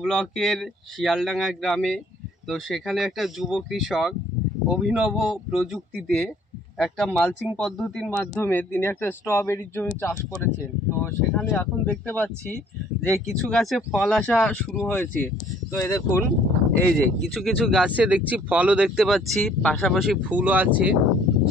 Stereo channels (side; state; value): both; normal; correlation 0.58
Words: ব্লকের শিয়ালডাঙ্গা গ্রামে। তো সেখানে একটা যুব কৃষক অভিনব প্রযুক্তিতে একটা মালচিং পদ্ধতির মাধ্যমে তিনি একটা স্ট্রবেরির জমি চাষ করেছেন। তো সেখানে এখন দেখতে পাচ্ছি যে কিছু গাছে ফল আসা শুরু হয়েছে। তো এই দেখুন, এই যে কিছু কিছু গাছে দেখছি ফলও দেখতে পাচ্ছি, পাশাপাশি ফুলও আছে।